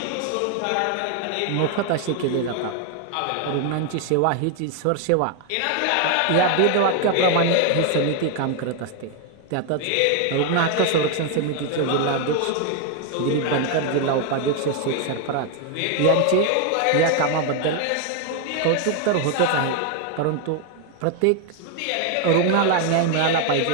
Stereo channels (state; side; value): different; both; correlation 0.01